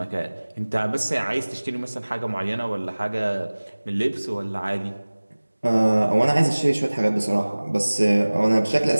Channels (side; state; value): both; inverted; correlation -1.00